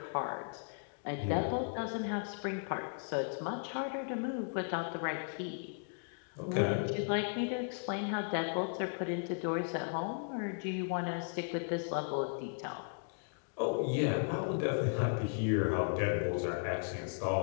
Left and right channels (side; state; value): right; silent; digital silence